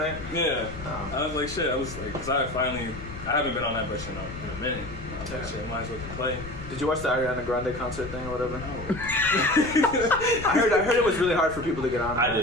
Yeah. I was like, shit, I was like, because I haven't been on that bitch in a minute. I was like, shit, might as well play. Did you watch the Ariana Grande concert thing or whatever? I heard it was really hard for people to get on. I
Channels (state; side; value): noise; left; rumble, 12 dB below the sound